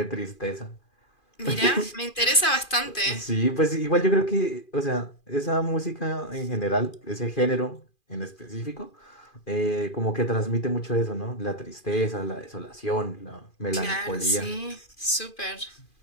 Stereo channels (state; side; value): late; right; 2.4 ms